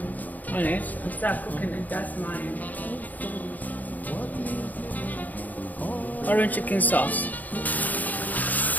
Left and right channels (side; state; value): right; late; 0.081 ms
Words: on it and start cooking it. That's my orange chicken sauce.